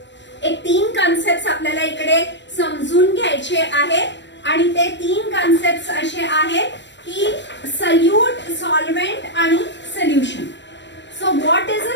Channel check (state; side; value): late; right; 0.53 ms